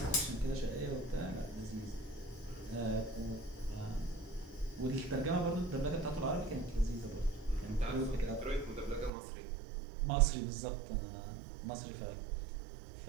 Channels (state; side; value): drops out; left; at 9.1 s